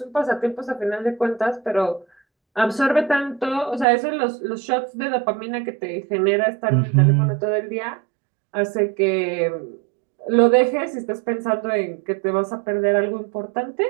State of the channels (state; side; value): drops out; left; at 3.9 s